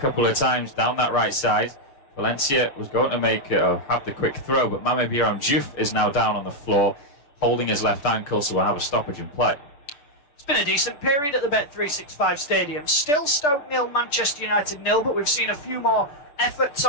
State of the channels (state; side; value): late; right; 6.8 ms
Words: of times down that right side. Valencia was going to make have the quick throw, but Mamadou Diouf is now down on the floor, holding his left ankle, so we'll have a stoppage in play. It's been a decent period at the Bet365 Stadium. Still Stoke 0, Manchester United 0, but we've seen a few more efforts